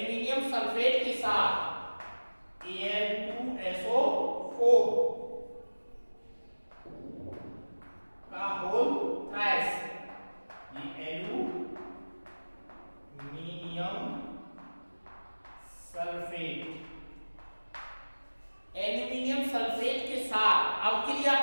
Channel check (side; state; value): both; inverted; correlation -1.00